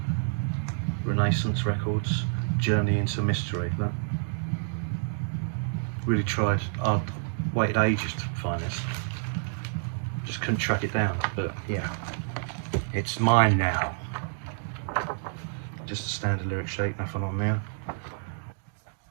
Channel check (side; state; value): left; silent; digital silence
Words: Renaissance Records, Journey into Mystery. Look. Really tried. I waited ages to find this. Just couldn't track it down, but yeah, it's mine now. Just a standard lyric sheet, nothing on there.